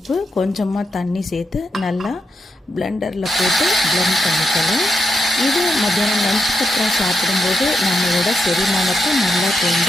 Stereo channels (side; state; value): both; normal; correlation 0.83